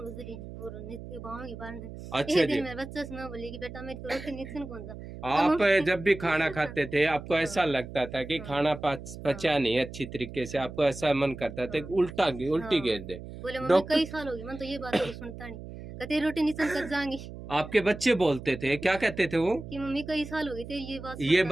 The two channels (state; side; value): noise; right; hum, 12 dB below the sound